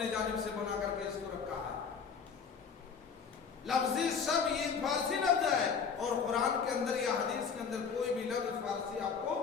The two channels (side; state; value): right; quieter; 6.1 dB